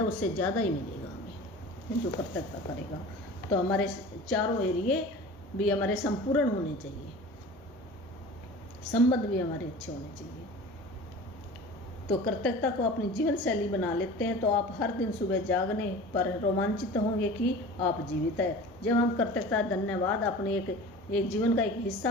उससे ज़्यादा ही मिलेगा हमें जो कर्तव्य करेगा। तो हमारे चारों एरिए भी हमारे संपूर्ण होने चाहिए, संबंध भी हमारे अच्छे होने चाहिए। तो कर्तव्यता को अपनी जीवन शैली बना लेते हैं तो आप हर दिन सुबह जागने पर रोमांचित होंगे कि आप जीवित है। जब हम कर्तव्यता धन्यवाद अपने एक जीवन का एक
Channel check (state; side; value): normal; both; correlation 0.38